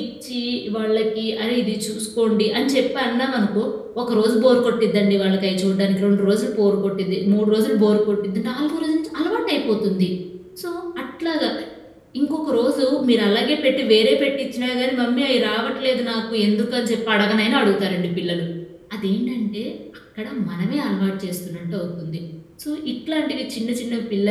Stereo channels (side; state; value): both; identical; correlation 1.00